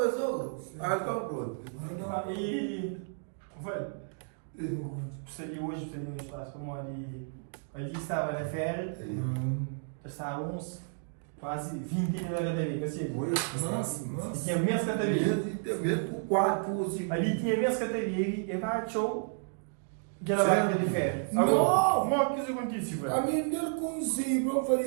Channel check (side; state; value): left; silent; digital silence